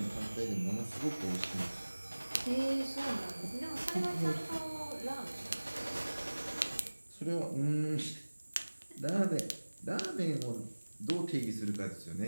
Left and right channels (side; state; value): both; inverted; correlation -1.00